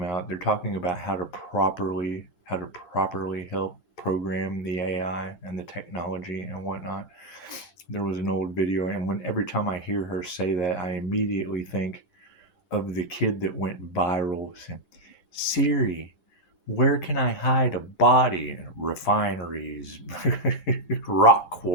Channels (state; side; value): late; right; 10 ms